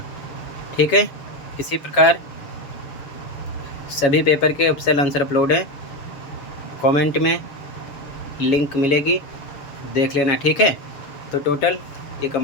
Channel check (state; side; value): late; right; 7.2 ms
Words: ठीक है, इसी प्रकार सभी पेपर के ऑफिशियल आंसर अपलोड हैं, कमेंट में लिंक मिलेगी, देख लेना। ठीक है, तो टोटल ये